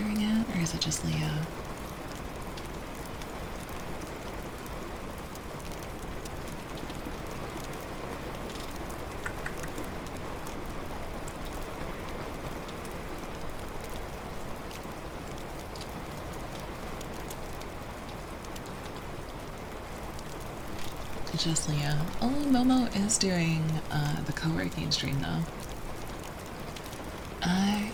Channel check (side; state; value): both; identical; correlation 1.00